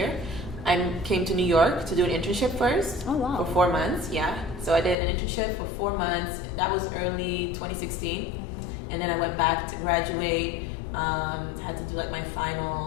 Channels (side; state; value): right; drops out; at 5.0 s